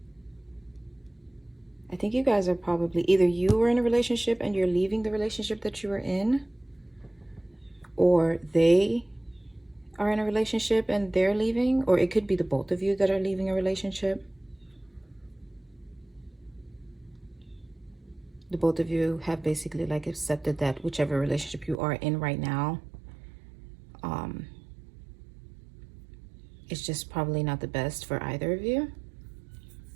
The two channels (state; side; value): drops out; left; at 21.8 s